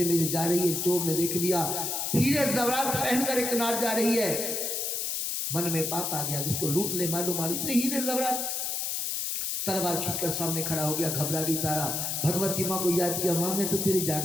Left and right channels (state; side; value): noise; left; hiss, 1 dB below the sound